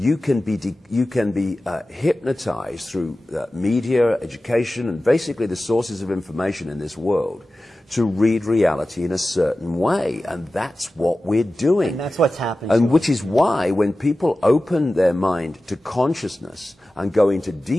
can be hypnotized through media, education, and basically the sources of information in this world to read reality in a certain way. And that's what we're doing. And that's what's happening. And which is why when people open their mind to consciousness and go into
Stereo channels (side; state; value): both; normal; correlation 0.95